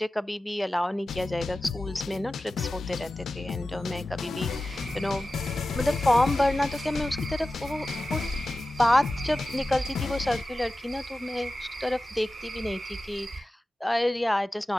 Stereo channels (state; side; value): normal; both; correlation 0.95